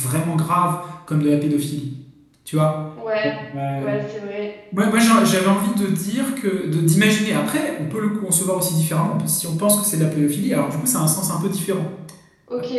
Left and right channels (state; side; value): identical; both; correlation 1.00